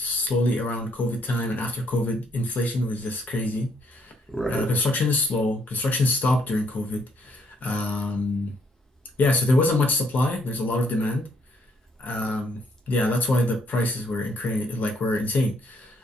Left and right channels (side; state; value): both; normal; correlation 0.70